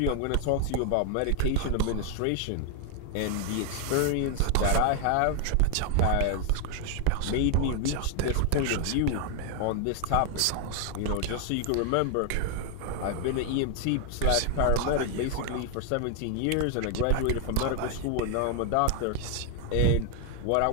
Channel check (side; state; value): both; different; correlation 0.00